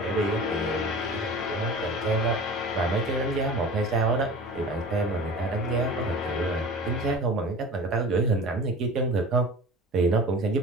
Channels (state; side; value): normal; both; correlation 0.38